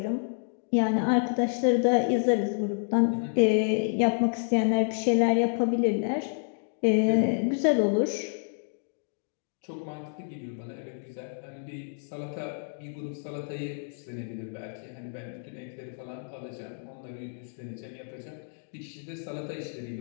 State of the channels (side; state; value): right; silent; digital silence